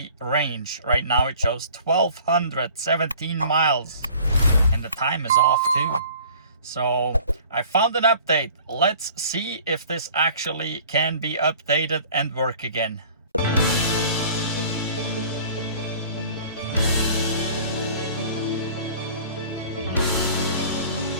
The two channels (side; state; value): both; inverted; correlation -0.48